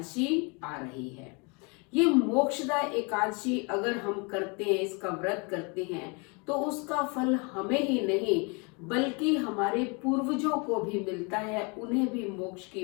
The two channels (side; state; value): right; quieter; 31.6 dB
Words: आ रही है। ये मोक्षदा एकादशी अगर हम करते हैं, इसका व्रत करते हैं, तो उसका फल हमें ही नहीं बल्कि हमारे पूर्वजों को भी मिलता है, उन्हें भी मोक्ष